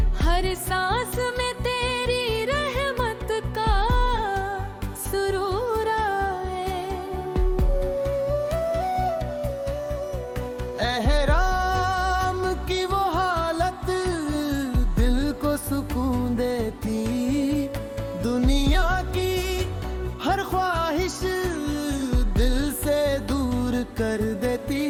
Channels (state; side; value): identical; both; correlation 1.00